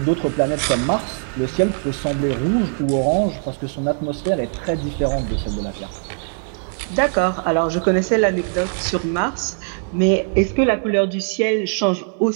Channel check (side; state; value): left; silent; 65 dB below the other